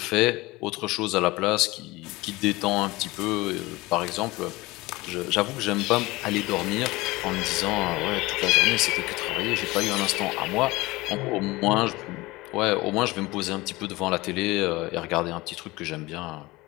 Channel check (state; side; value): quieter; right; 21.0 dB